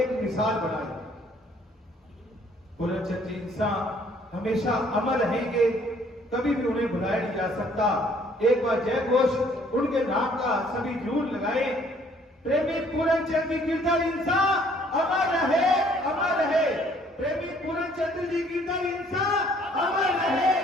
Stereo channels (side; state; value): both; normal; correlation 0.61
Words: मिसाल बनाई। पूर्णचंद जी इंसान हमेशा अमर रहेंगे, कभी भी उन्हें भुलाया नहीं जा सकता। एक बार जय घोष उनके नाम का सभी जरूर लगाए। प्रेमी पूर्णचंद जी गिरधर इंसा अमर रहे, अमर रहे। प्रेमी पूर्णचंद जी गिरधर इंसा अमर रहे,